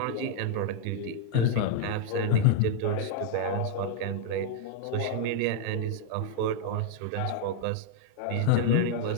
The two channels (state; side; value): different; both; correlation -0.01